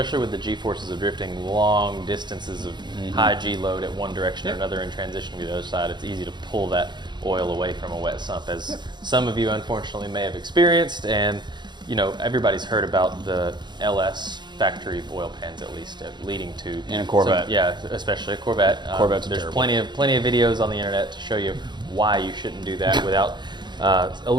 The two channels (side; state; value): left; late; 0.21 ms